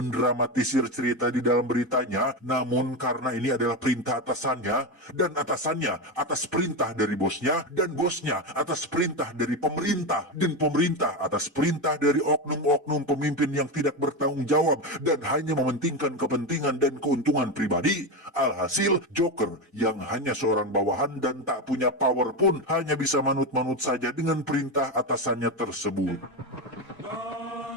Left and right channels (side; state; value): both; normal; correlation 0.15